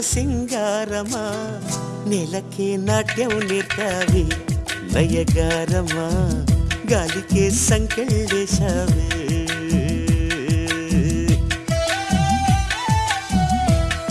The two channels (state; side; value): identical; both; correlation 1.00